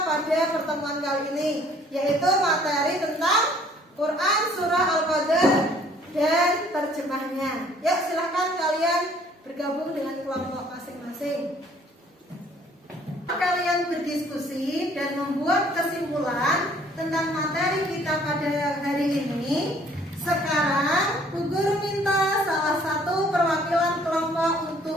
pada pertemuan kali ini, yaitu materi tentang Quran surah Al-Qadar dan terjemahnya. Ya, silahkan kalian bergabung dengan kelompok masing-masing. Kalian berdiskusi dan membuat kesimpulan tentang materi kita pada hari ini. Sekarang Bu Guru minta salah satu perwakilan kelompok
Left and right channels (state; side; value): normal; both; correlation 0.58